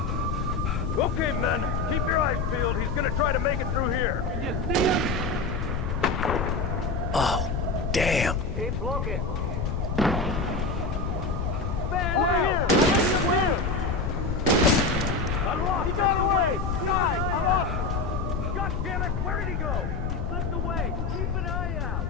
Okay, men. Keep your eyes peeled. He's gonna try to make it through here. Can you see him? Oh, damn. Keep looking. Over here! I'm lost. He got away. Guys, I'm lost. God damn it. Where did he go? He slipped away. Keep an eye out.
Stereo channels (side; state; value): left; noise; rumble, 1 dB below the sound